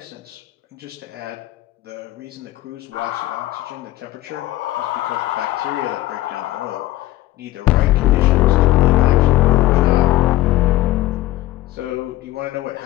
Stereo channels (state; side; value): quieter; right; 16.4 dB